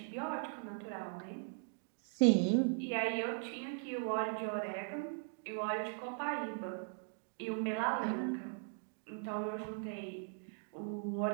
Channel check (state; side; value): silent; left; 52 dB below the other